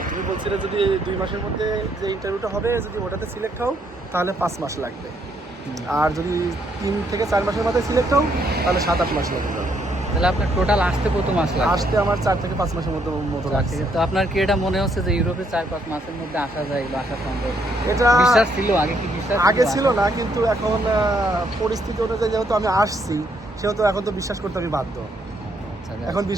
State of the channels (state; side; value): normal; both; correlation 0.72